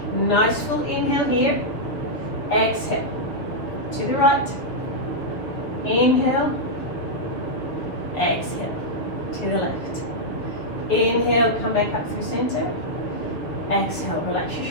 Nice full inhale here. Exhale to the right. Inhale. Exhale to the left. Inhale, come back up through center. Exhale, relax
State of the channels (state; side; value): late; right; 6.8 ms